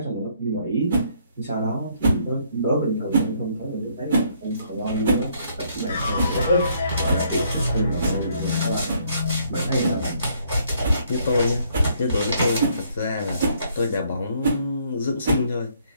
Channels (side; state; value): both; inverted; correlation -0.67